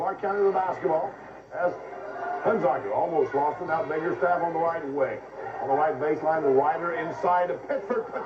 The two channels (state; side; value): identical; both; correlation 1.00